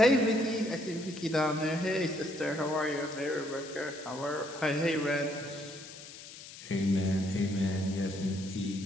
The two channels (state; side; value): noise; left; hiss, 15 dB below the sound